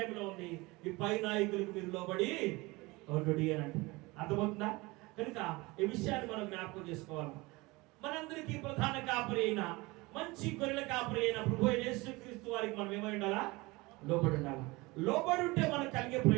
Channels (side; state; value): left; quieter; 23.1 dB